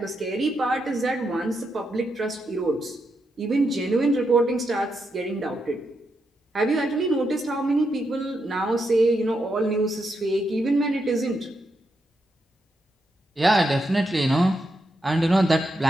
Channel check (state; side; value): normal; both; correlation 0.83